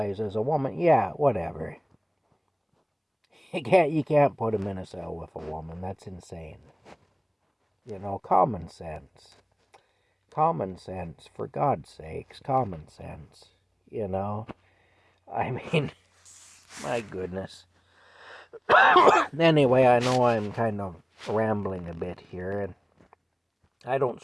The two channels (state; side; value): identical; both; correlation 1.00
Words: as a woman. Yeah, whatever. You can't put him in a cell with a woman. That's insane. Common sense. Common sense, for God's sakes, common sense. I mean, my goodness. Anyway, I know I'm kind of rambling a bit here, and I don't